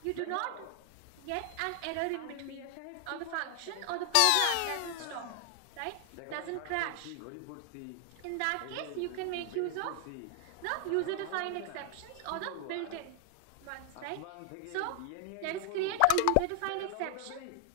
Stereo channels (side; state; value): both; different; correlation 0.00